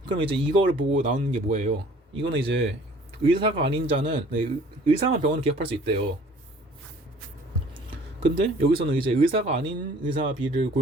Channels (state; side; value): normal; both; correlation 0.52